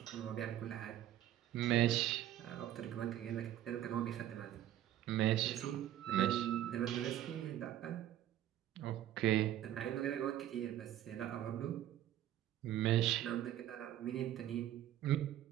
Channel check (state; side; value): quieter; left; 12.4 dB